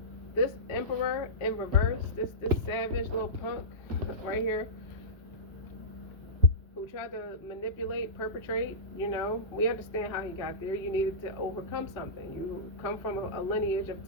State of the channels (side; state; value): both; normal; correlation -0.17